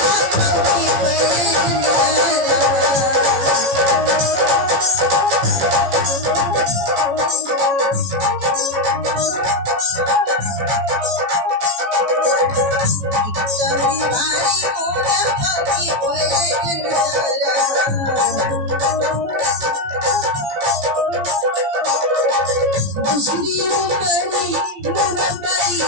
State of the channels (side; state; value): left; late; 15 ms